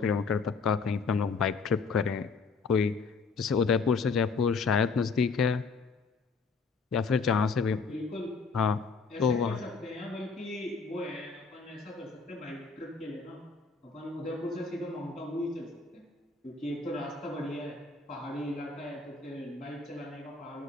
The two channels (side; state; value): right; quieter; 4.8 dB